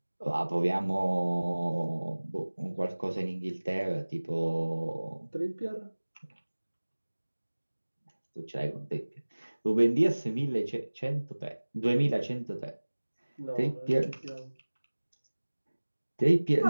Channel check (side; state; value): both; inverted; correlation -1.00